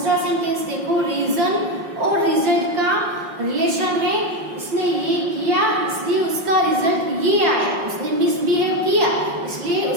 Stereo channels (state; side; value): late; left; 5.6 ms